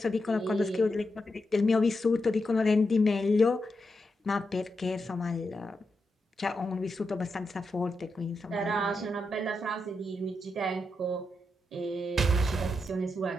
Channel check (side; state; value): both; normal; correlation 0.86